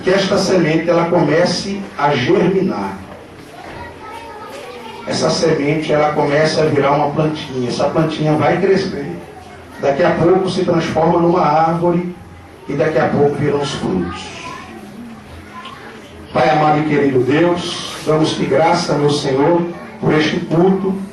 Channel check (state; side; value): identical; both; correlation 1.00